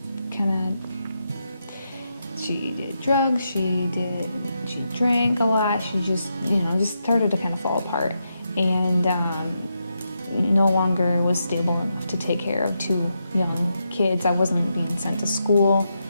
she did drugs, she drank a lot, she just started to kind of fall apart, and no longer was stable enough to take care of 2 young kids. I wasn't being sent to school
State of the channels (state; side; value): inverted; both; correlation -0.84